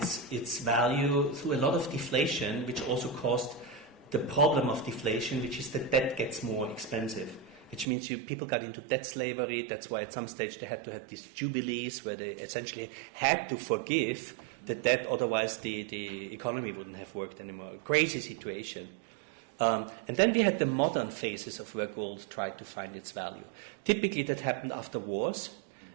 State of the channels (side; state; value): left; drops out; at 7.9 s